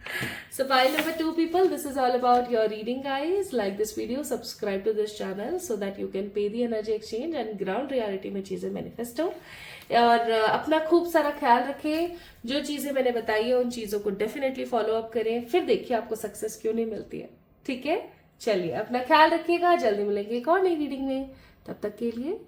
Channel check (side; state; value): both; identical; correlation 1.00